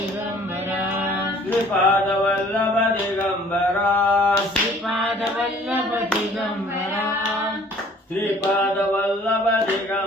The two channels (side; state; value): both; normal; correlation 0.54